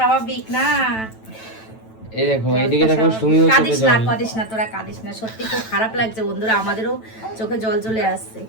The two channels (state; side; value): late; right; 9.0 ms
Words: না। এই দেখো এইদিকে দেখো সুমিও চোখে জল। কাঁদিস না তোরা, কাঁদিস না, সত্যি খুব খারাপ লাগছে বন্ধুরা, আমাদেরও চোখে জল চলে আসছে।